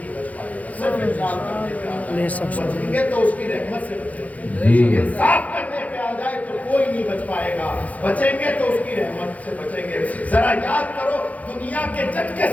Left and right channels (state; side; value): late; right; 0.072 ms